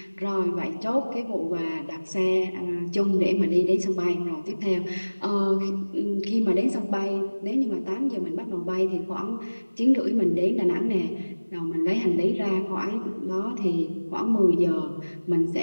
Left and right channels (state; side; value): inverted; both; correlation -1.00